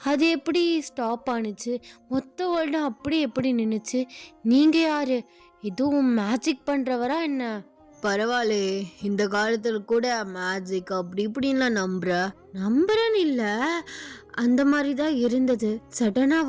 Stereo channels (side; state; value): both; identical; correlation 1.00